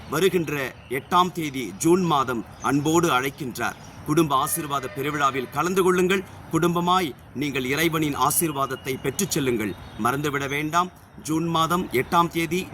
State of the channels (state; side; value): identical; both; correlation 1.00